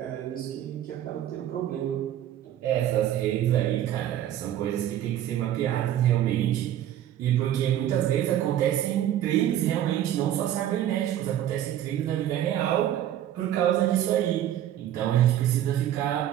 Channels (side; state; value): left; quieter; 11.7 dB